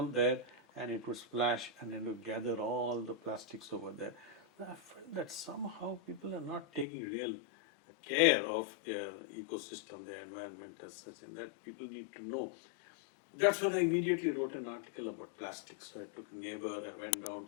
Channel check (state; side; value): drops out; right; at 6.9 s